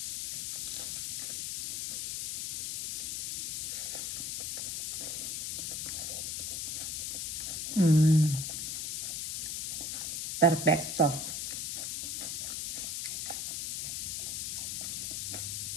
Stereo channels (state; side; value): noise; left; hiss, 2 dB below the sound